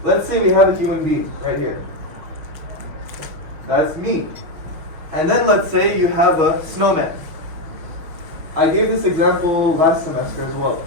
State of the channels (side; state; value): left; late; 6.3 ms